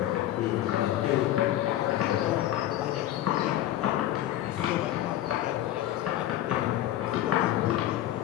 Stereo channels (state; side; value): quieter; right; 13.4 dB